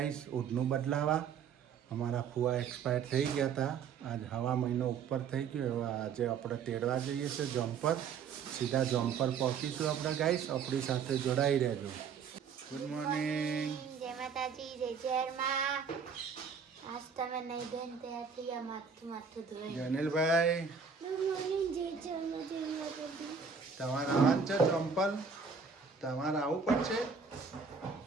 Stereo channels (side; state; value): left; quieter; 6.1 dB